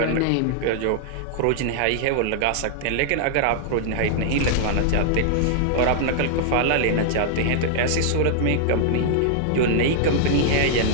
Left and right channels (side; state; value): both; different; correlation -0.01